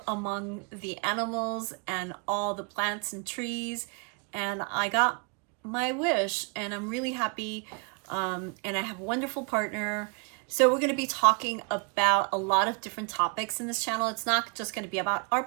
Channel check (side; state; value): left; quieter; 35.4 dB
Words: among the animals and all the plants and trees. And I got my wish, and I'm really happy. And I have a wonderful partner. So we're going to be talking about a lot of different topics in this channel. It's not just going to be about